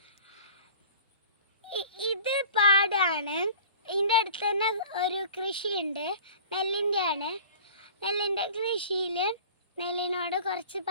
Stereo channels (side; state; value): both; inverted; correlation -0.44